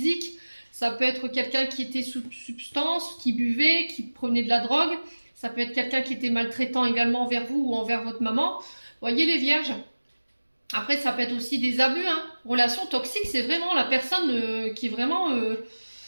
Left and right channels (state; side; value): inverted; both; correlation -1.00